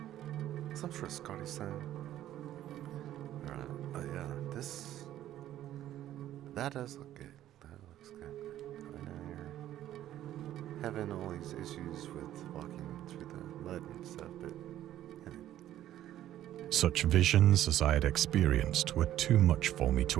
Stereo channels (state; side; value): quieter; left; 12.6 dB